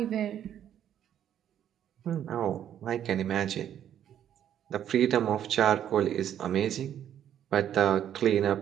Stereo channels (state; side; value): quieter; left; 10.2 dB